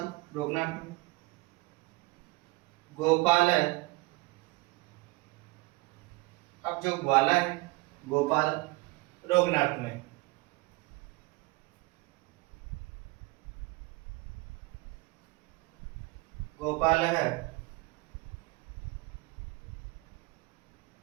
रोकना अर्थ में। गोपाल है। अब जो ग्वाला है गोपाल रोगनार्थ में। गोपाल है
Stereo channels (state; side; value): quieter; left; 23.4 dB